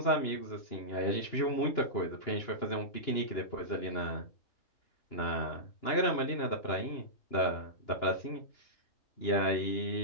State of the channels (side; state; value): right; late; 2.9 ms